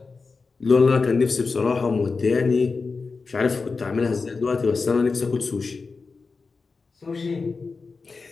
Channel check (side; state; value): right; quieter; 4.4 dB